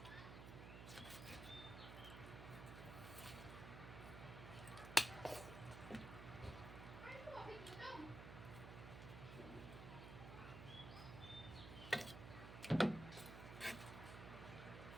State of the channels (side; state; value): right; noise; hum, 8 dB below the sound